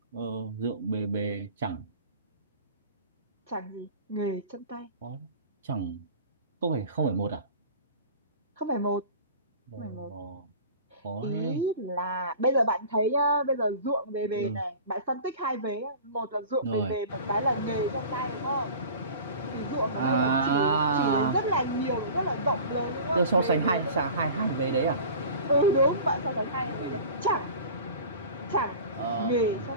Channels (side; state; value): both; inverted; correlation -0.40